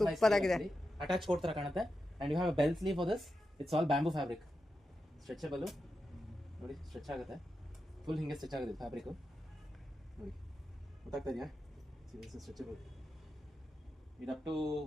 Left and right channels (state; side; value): normal; both; correlation 0.89